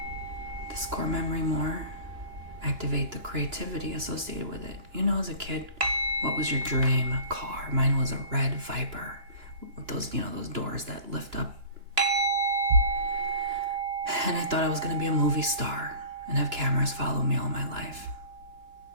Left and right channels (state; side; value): late; left; 2.9 ms